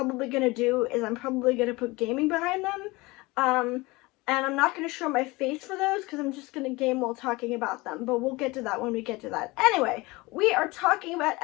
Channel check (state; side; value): quieter; right; 22.8 dB